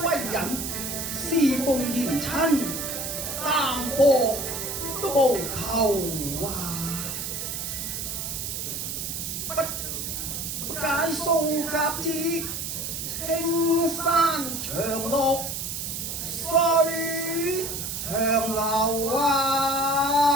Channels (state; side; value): noise; right; hiss, 4 dB below the sound